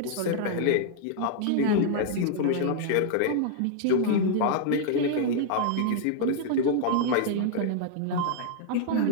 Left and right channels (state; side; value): different; both; correlation -0.01